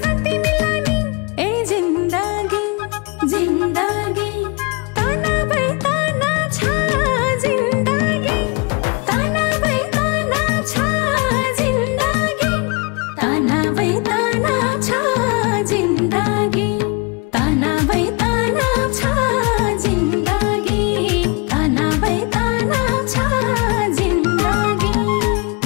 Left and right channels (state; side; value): quieter; right; 29.1 dB